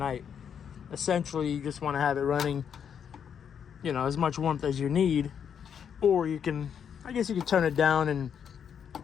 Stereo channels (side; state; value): right; quieter; 7.9 dB